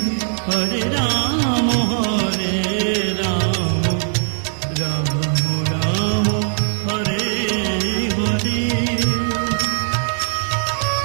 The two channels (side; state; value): left; silent; 66 dB below the other